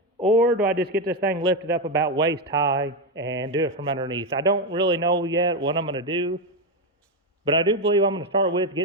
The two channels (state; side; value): normal; both; correlation 0.08